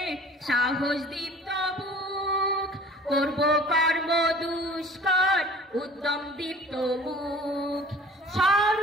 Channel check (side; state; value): both; normal; correlation 0.47